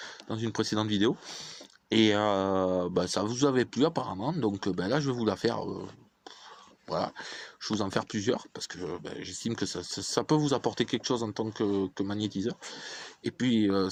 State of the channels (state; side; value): identical; both; correlation 1.00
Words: dans une précédente vidéo. Et ça vous avait plu apparemment, donc là je vais vous la faire. Voilà, je vais vous en faire plusieurs parce que j'estime que ça peut vous apporter quelque chose en tant que magnétiseur. Et puis,